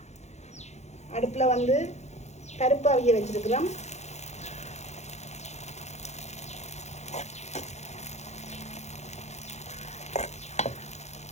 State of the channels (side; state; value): right; late; 0.33 ms